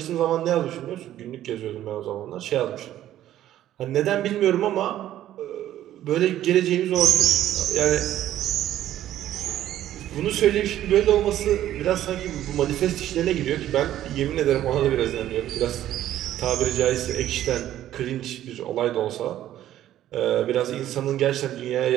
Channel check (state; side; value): quieter; left; 12.6 dB